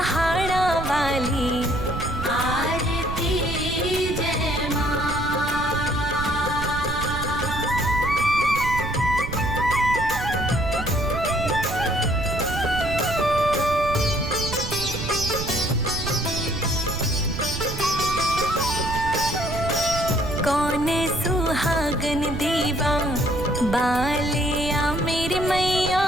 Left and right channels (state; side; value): noise; right; rumble, 6 dB below the sound